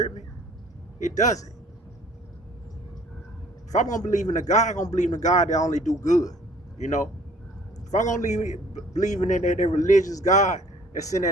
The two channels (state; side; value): normal; both; correlation 0.55